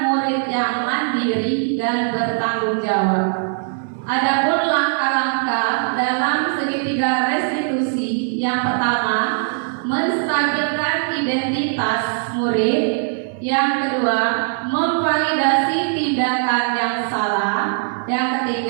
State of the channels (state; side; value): silent; left; 66 dB below the other